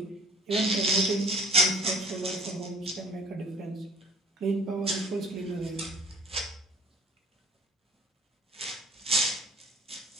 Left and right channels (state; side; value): normal; both; correlation 0.49